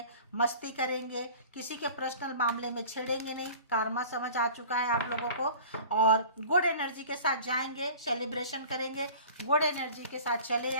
मस्ती करेंगे, किसी के पर्सनल मामले में छेड़ेंगे नहीं। कारमा समझ आ चुका है आप लोगों को, और गुड एनर्जी के साथ जाएंगे, सेलिब्रेशन करेंगे, गुड एनर्जी के साथ चले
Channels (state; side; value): inverted; both; correlation -0.42